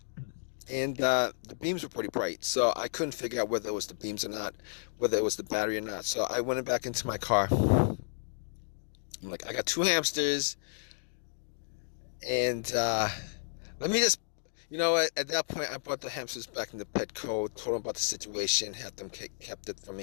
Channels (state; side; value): silent; right; digital silence